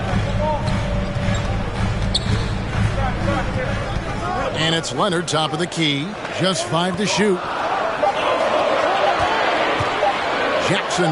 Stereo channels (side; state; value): both; identical; correlation 1.00